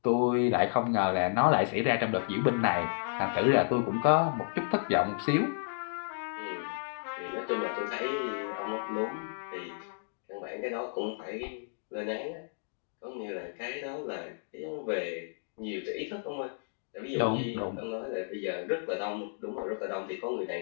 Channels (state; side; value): silent; right; digital silence